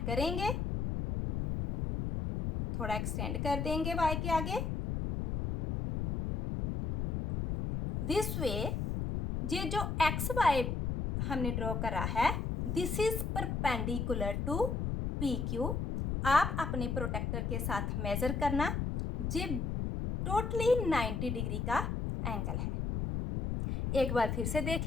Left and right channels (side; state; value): left; noise; rumble, 1 dB below the sound